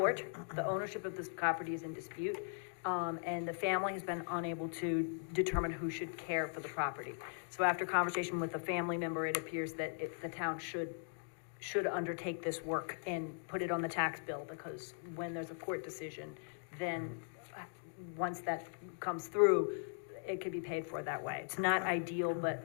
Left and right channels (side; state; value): right; silent; digital silence